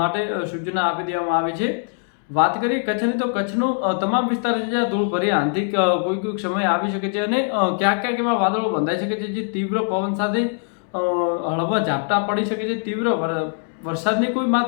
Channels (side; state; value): right; silent; 62 dB below the other